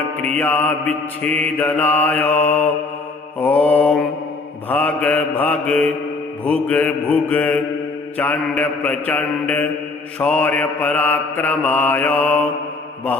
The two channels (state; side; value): quieter; right; 3.7 dB